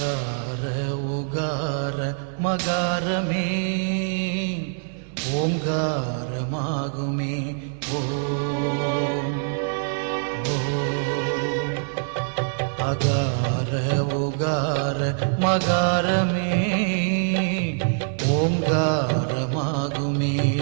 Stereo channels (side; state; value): left; silent; 62 dB below the other